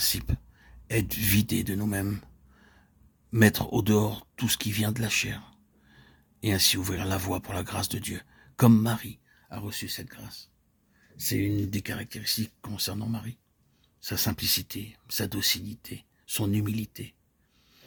Être vidé de nous-mêmes, mettre au dehors tout ce qui vient de la chair, et ainsi ouvrir la voie pour la grâce de Dieu, comme Marie a reçu cette grâce. C'est une des caractéristiques concernant Marie. Sa simplicité, sa docilité, son humilité.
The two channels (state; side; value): identical; both; correlation 1.00